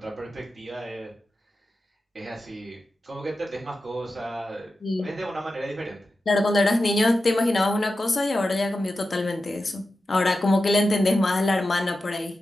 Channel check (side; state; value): both; normal; correlation 0.92